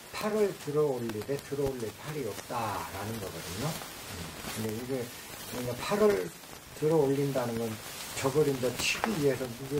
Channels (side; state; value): both; identical; correlation 1.00